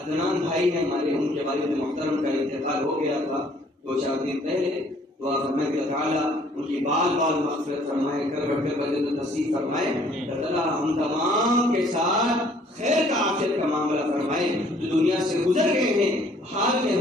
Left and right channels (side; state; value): both; normal; correlation 0.60